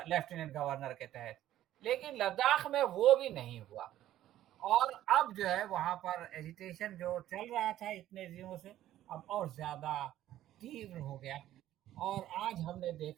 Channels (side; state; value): left; quieter; 13.1 dB